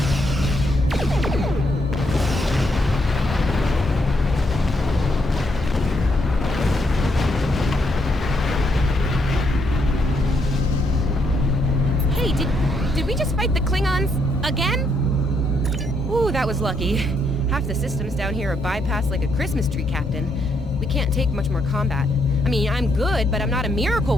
Hey, did we just fight the Klingons again? Ooh, that was lucky. Half the systems down here are bypassed like a Christmas tree, Captain. We can't take much more combat. I mean, I'm good, but I'm not a miracle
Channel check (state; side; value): normal; both; correlation 0.75